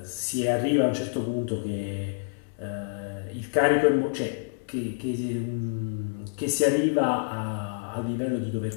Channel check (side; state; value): right; silent; digital silence